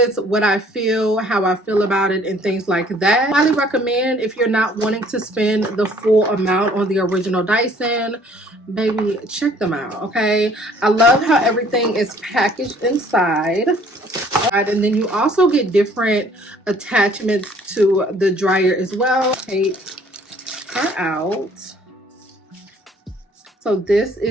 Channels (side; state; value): both; normal; correlation 0.58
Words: what I feel, how I feel about it, and things like that. Highly recommend if you're not wanting to spend the full amount on the original Dyson. Baby, check them out. Okay, I love how everything is packaged inside. And then you also get different attachments to the dryer as well. Take her out. So this